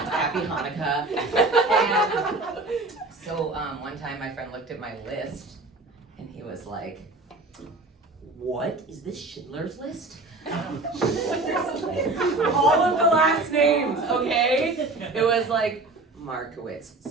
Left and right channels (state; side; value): quieter; left; 3.2 dB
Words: Hanukkah. And so one time my friend looked at my list and he was like, what is this Schindler's List? All of the last names, okay? It was like Markowitz,